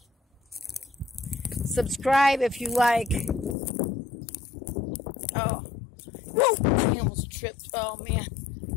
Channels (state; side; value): drops out; right; at 3.6 s